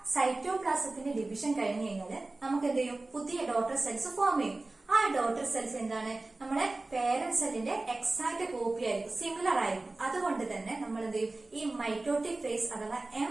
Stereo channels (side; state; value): left; quieter; 3.1 dB